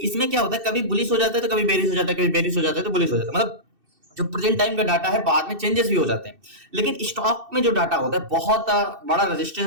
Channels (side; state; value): left; late; 2.6 ms